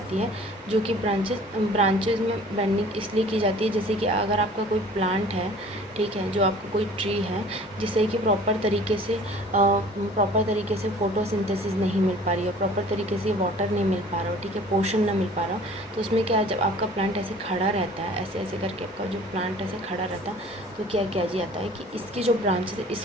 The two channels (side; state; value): both; normal; correlation 0.48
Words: है जो कि ब्रांचेस में बेंडिंग इसलिए की जाती है, जैसे कि अगर आपका कोई प्लांट है, ठीक है, जो आपका कोई ट्री है जिससे कि प्रॉपर तरीके से फोटोसिंथेसिस नहीं मिल पा रही है, प्रॉपर तरीके से वाटर नहीं मिल पा रहा हो, ठीक है, पोषण ना मिल पा रहा हो, तो उसमें क्या, जब आपका प्लांट ऐसे खड़ा रहता है, ऐसे ऐसे करके आपका जो प्लांट ऐसे खड़ा रहता है तो क्या किया जाता है कि इसकी जो ब्रांचेस है